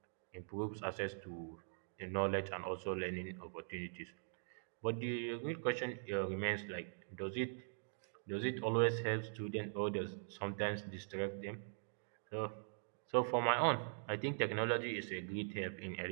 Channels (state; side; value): silent; left; digital silence